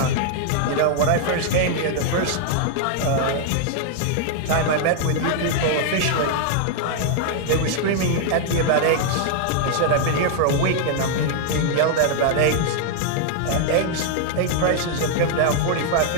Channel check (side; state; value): both; different; correlation 0.00